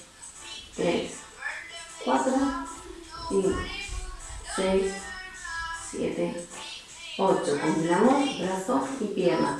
3, 4, 5, 6, 7, 8. Combinamos brazo y pierna.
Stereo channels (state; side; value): identical; both; correlation 1.00